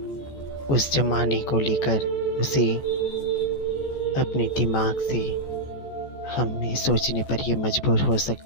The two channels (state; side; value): late; right; 14 ms